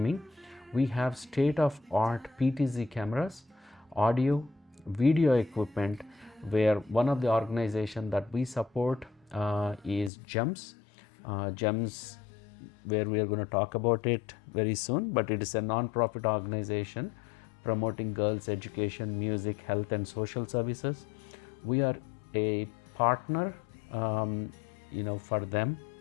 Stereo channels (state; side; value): drops out; right; at 10.1 s